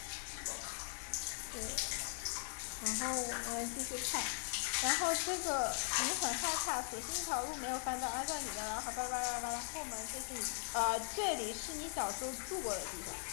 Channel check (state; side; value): silent; right; digital silence